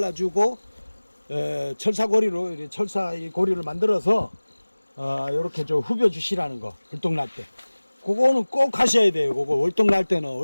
철사고리로 철사 고리를 만들어서 이렇게 후벼 주시라는 거. 월동 날 때 그거는 꼭 하셔야 돼요. 그거 월동 날 때는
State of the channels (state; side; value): inverted; both; correlation -1.00